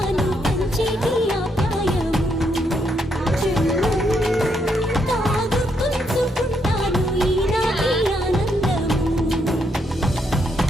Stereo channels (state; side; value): normal; both; correlation 0.76